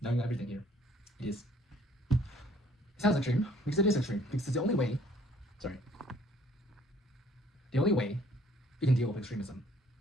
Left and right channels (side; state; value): both; normal; correlation 0.60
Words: knowing everything here, it sounds extreme, because it is extreme, because it's the only way you can deal with extremism